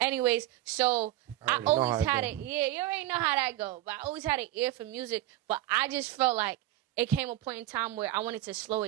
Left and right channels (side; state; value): left; quieter; 14.7 dB